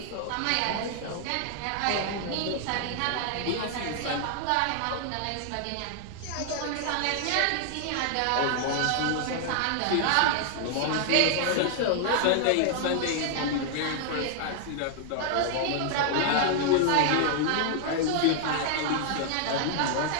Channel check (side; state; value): both; different; correlation 0.00